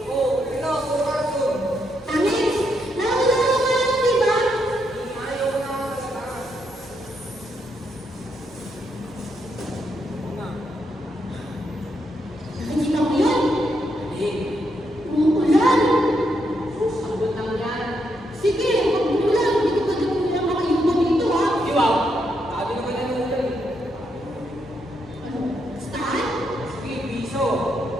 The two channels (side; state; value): both; normal; correlation 0.79